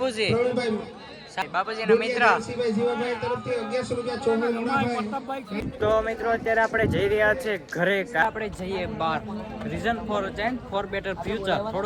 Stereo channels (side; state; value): both; identical; correlation 1.00